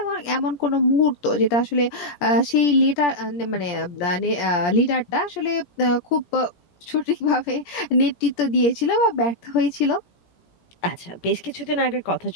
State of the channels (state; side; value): late; right; 17 ms